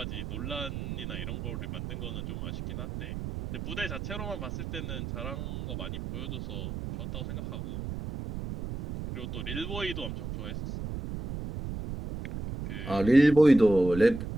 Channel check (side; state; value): right; noise; rumble, 6 dB below the sound